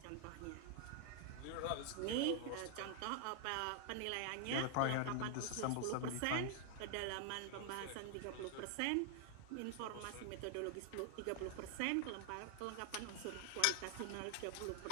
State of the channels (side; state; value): both; different; correlation 0.00